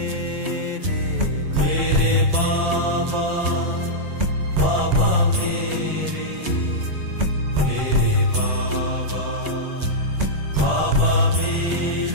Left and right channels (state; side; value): late; left; 9.5 ms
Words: मेरे बाबा बाबा मेरे बाबा बाबा